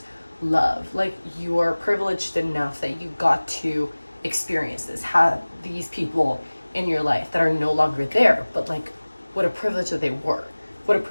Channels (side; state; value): both; inverted; correlation -1.00